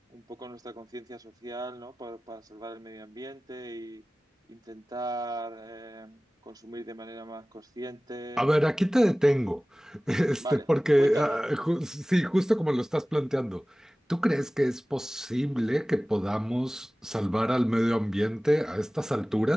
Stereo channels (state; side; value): normal; both; correlation 0.98